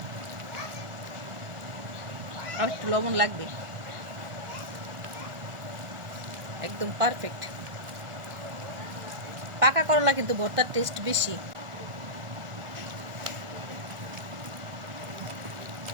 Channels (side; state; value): left; late; 1.4 ms